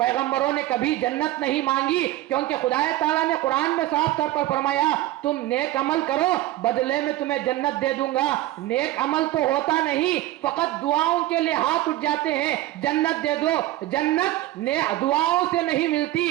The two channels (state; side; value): quieter; left; 15.6 dB